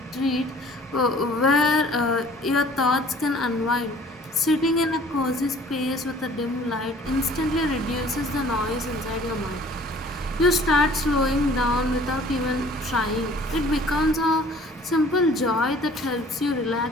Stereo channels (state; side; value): normal; both; correlation 0.51